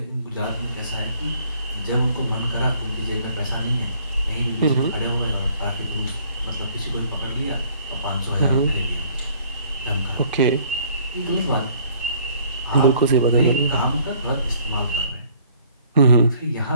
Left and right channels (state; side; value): inverted; both; correlation -0.59